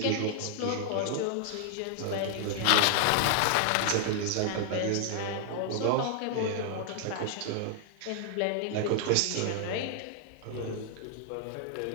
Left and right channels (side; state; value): both; different; correlation 0.00